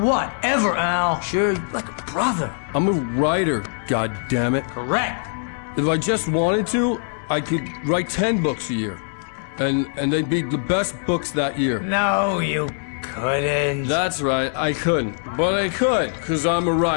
ever, Al. Sure, like a brother. I'm a writer, goddammit. Correct. If I just wanted to, I could write 10 books a year. And they'd be the best books that year. No, you couldn't. That's right, I couldn't. But I could, because I'm a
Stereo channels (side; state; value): right; silent; 64 dB below the other